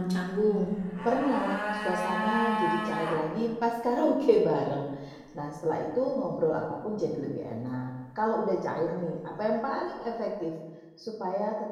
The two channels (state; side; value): identical; both; correlation 1.00